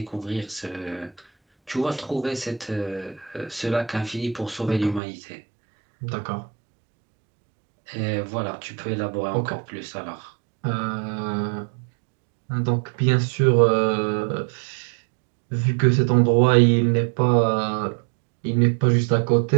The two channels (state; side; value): drops out; left; at 5.0 s